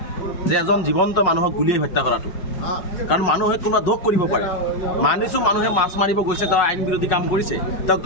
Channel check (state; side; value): late; right; 5.4 ms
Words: যে এজন জীৱন্ত মানুহক গুলিয়াই হত্যা কৰাটো? কাৰণ মানুহে কোনোবা দোষ কৰিব পাৰে। মানিছোঁ মানুহে মাছ মাৰিব গৈছে, তেওঁ আইন বিৰোধী কাম কৰিছে, তেওঁক